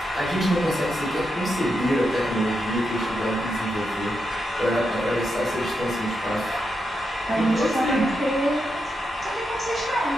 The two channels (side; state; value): both; normal; correlation 0.85